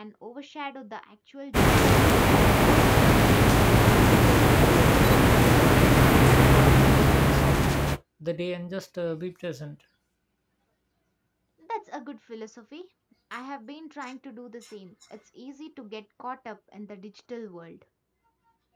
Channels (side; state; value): both; identical; correlation 1.00